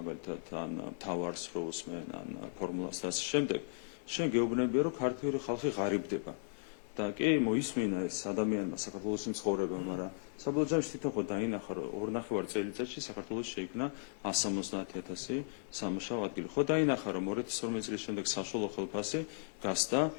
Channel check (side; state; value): right; silent; digital silence